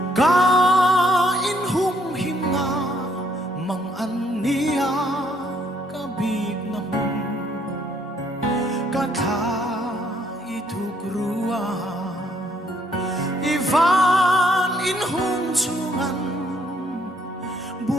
ka in hum him nga mang an niya kabig na hum ka tha ituk ruwa ivan in hum chungan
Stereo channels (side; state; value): both; normal; correlation 0.68